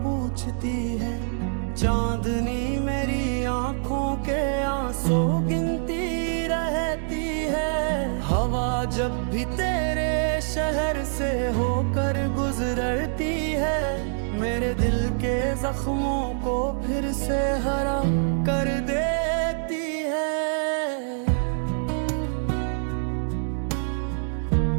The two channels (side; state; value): left; silent; digital silence